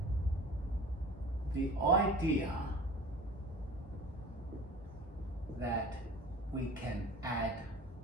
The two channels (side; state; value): both; normal; correlation 0.40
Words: The idea that we can add